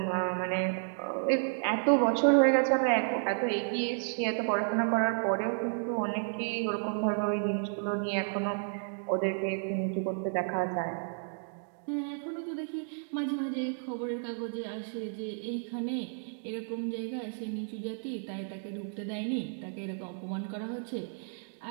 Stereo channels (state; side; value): silent; left; digital silence